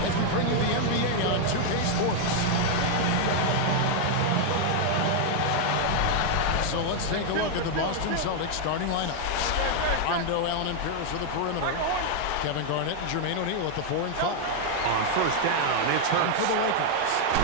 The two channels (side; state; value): both; different; correlation 0.00